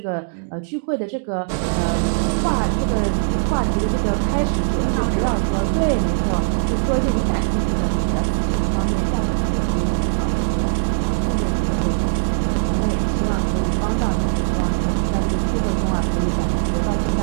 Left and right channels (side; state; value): left; silent; digital silence